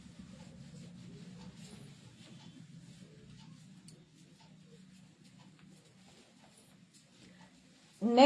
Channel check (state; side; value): identical; both; correlation 1.00